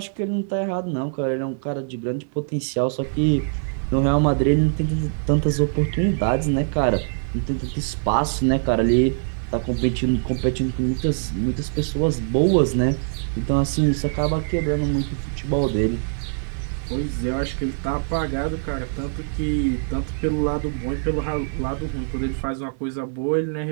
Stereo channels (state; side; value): silent; left; 57 dB below the other